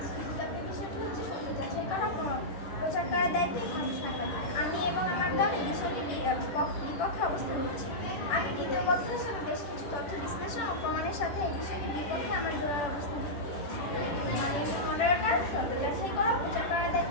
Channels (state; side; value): late; right; 10 ms